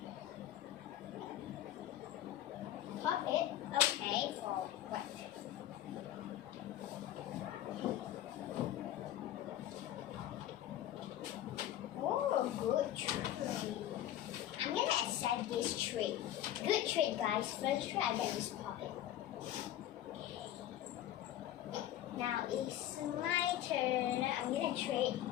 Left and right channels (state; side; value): quieter; right; 12.5 dB